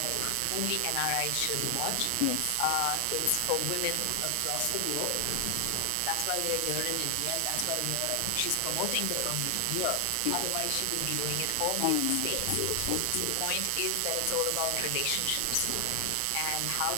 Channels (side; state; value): both; different; correlation 0.00